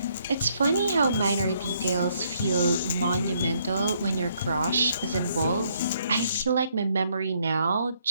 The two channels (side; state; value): both; inverted; correlation -0.70